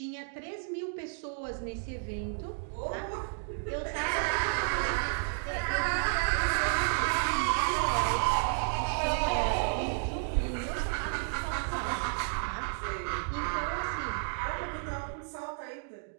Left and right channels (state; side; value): silent; left; 57 dB below the other